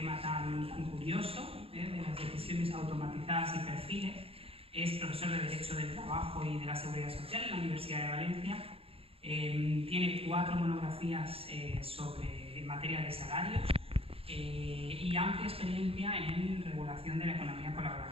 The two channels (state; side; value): late; left; 0.27 ms